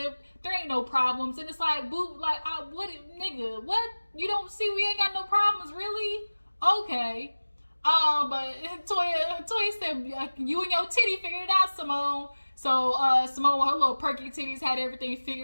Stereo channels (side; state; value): both; inverted; correlation -1.00